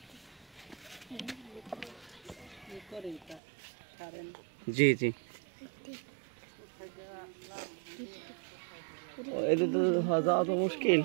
জি জি, এটা তো যাওয়া তো মুশকিল।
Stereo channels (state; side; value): drops out; left; at 3.4 s